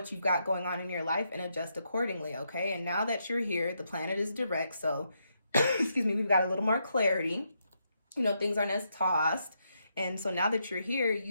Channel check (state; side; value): inverted; both; correlation -0.80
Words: you've got going on in your life and adjust accordingly, okay? And now that you're here, the planet is direct, so, excuse me, we've got a little more clarity. Things aren't as tossed. And so now that you're here,